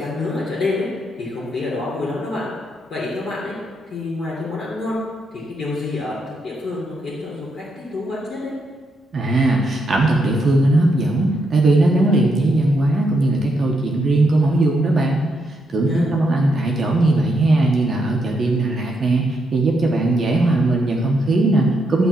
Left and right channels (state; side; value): normal; both; correlation 0.79